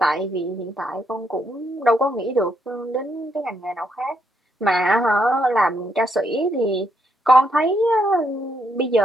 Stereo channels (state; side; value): normal; both; correlation 0.76